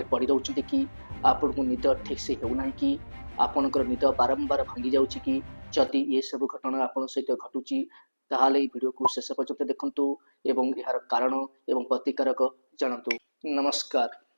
ପଡ଼ି ରହୁଛନ୍ତି କି? ଆପଣଙ୍କୁ ନିଦ ଠିକ୍ ସେ ହେଉନାହିଁ କି? ଆପଣଙ୍କର ନିଦ ବାରମ୍ବାର ଭାଙ୍ଗି ଯାଉଛି କି? ଯଦି ଏସବୁ ଘଟଣା ଆପଣଙ୍କ ସହିତ ଘଟୁଛି ତାହେଲେ ଏହି ଭିଡ଼ିଓକୁ ଶେଷ ପର୍ଯ୍ୟନ୍ତ ଦେଖନ୍ତୁ ଏବଂ ଏହାର କାରଣ ଏବଂ ପ୍ରତିକାରକ ଜାଣନ୍ତୁ। ନମସ୍କାର।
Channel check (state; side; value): inverted; both; correlation -1.00